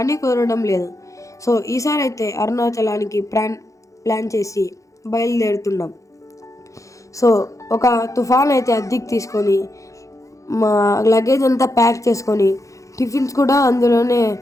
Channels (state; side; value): late; right; 0.15 ms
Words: కుదరడం లేదు. సో ఈసారి అయితే అరుణాచలానికి ప్లాన్ చేసి బయలుదేరుతున్నాం. సో ఒక తుఫాన్ అయితే అద్దెకి తీసుకొని మా లగేజ్ అంతా ప్యాక్ చేసుకొని టిఫిన్స్ కూడా అందులోనే